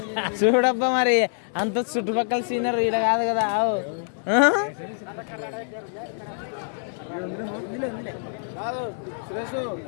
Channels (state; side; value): silent; right; 58 dB below the other